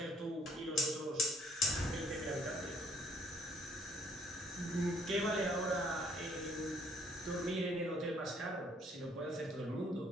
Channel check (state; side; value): normal; both; correlation 0.63